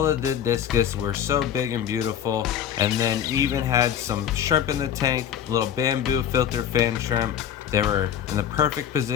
of the Discus were so big and beautiful, and then even had some shrimp in the tank, little bamboo filter fan shrimp. They were in the perfect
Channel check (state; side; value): quieter; right; 9.4 dB